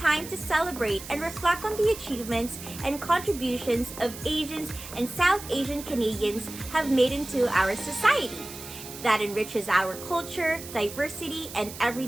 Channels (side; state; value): right; noise; hiss, 13 dB below the sound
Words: to celebrate and reflect on the achievements and contributions of Asians and South Asian Canadians have made into our society that enriches our culture, diversity, and